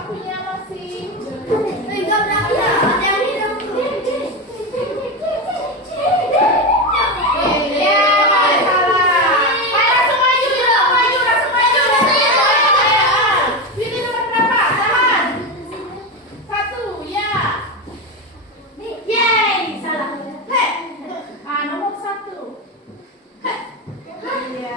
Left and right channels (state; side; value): normal; both; correlation 0.16